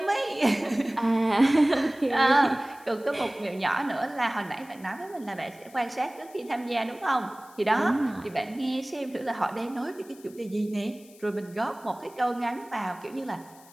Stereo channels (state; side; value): noise; left; hiss, 24 dB below the sound